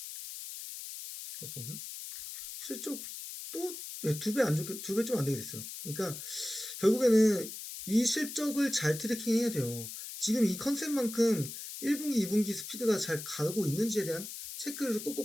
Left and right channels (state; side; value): noise; left; hiss, 9 dB below the sound